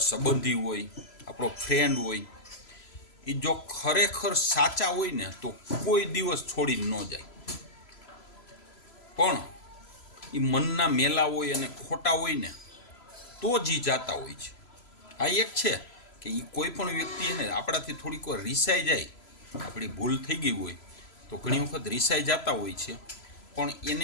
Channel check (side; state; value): right; late; 3.0 ms